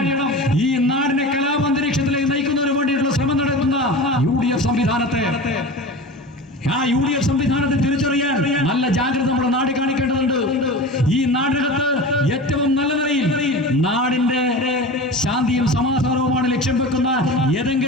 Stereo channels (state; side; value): normal; both; correlation 0.32